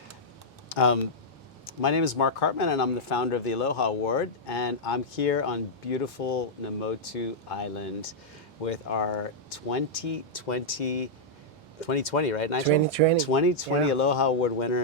My name is Mark Hartmann, and I'm the founder of the Aloha Award, and I'm here on beautiful Namotu Island with our 2020, right, Nigel? 2020. 2020 Yeah. Aloha Award winner,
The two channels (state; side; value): normal; both; correlation -0.07